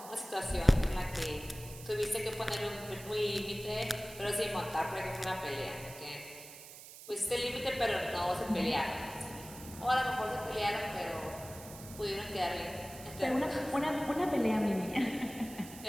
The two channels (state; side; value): noise; right; hiss, 15 dB below the sound